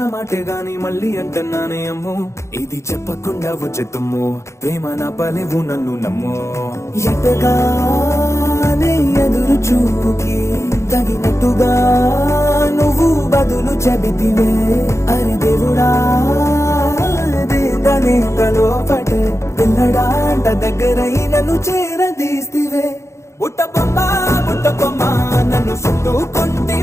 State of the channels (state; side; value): late; right; 0.14 ms